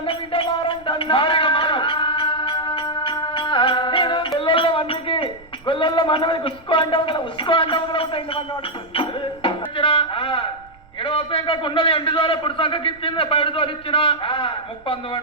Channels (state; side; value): noise; right; rumble, 26 dB below the sound